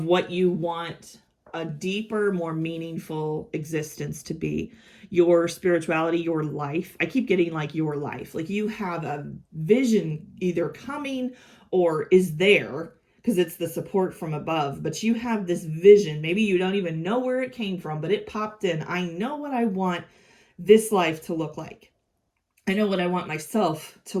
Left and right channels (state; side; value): identical; both; correlation 1.00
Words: what you want a deeper, more meaningful existence to be. Your spirituality, your life. I keep getting like your life. Like you have a vision either coming or is there because it's the support from above. But you have this vision. Maybe you don't even know where it came from, but it popped in. I know what I want this life to look like. I know what I want myself to